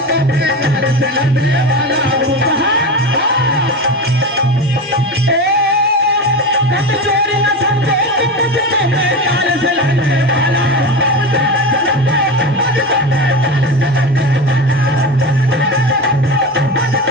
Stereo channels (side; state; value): both; normal; correlation 0.23